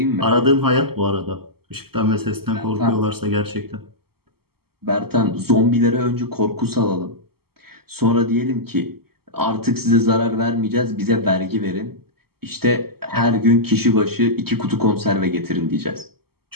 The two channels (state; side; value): late; left; 0.95 ms